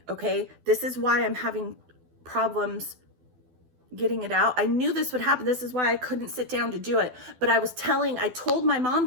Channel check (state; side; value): late; left; 12 ms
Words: okay? This is why I'm having problems getting it out. I knew this would happen. This is why I couldn't sit down to do it. But I told my mom